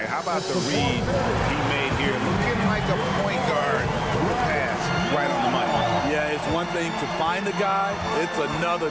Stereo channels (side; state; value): both; identical; correlation 1.00